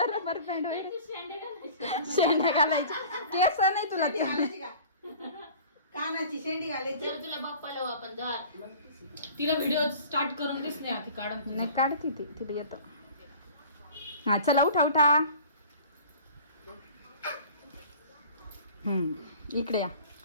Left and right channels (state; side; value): inverted; both; correlation -0.44